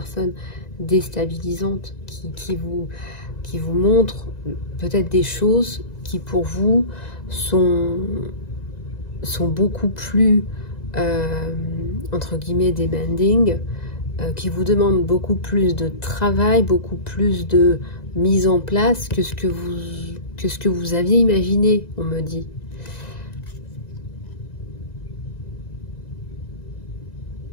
déstabilisantes qui vous montrent peut-être des choses qui pour vous sont beaucoup plus entre guillemets demanding, qui vous demandent beaucoup plus de travail, beaucoup plus de mise en place que ce que vous aviez imaginé, on me dit.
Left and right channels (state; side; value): late; right; 1.9 ms